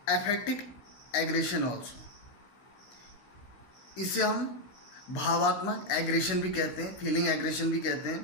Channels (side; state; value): right; late; 16 ms